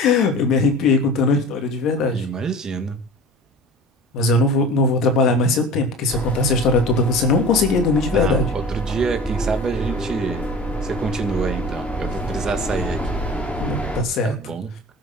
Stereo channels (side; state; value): both; normal; correlation 0.38